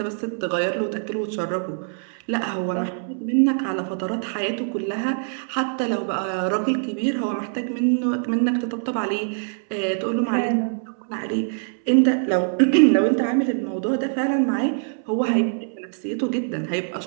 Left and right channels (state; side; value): silent; left; 63 dB below the other